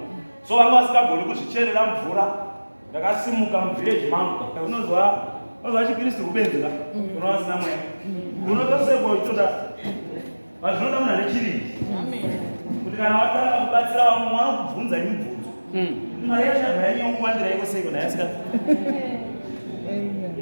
So vanga vasingagoni kuzvicherera mvura. Ndakasimuka muvillage mangu. Unozwa chiKristu kubenzera. Unowa vasina mweya. Unotosekwa ichoda. Zvinoda munhu ane chirindi. Kuti kana watanga kubatsira vamwe vanokubvunza mibvunzo. Mari yachabva yanyongwandira iko seiko ndayasika.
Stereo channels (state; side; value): inverted; both; correlation -1.00